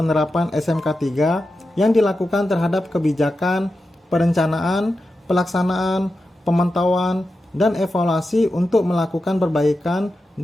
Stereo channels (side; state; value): both; normal; correlation 0.91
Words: SMK 3 yang dilakukan terhadap kebijakan, perencanaan, pelaksanaan, pemantauan, dan evaluasi untuk melakukan perbaikan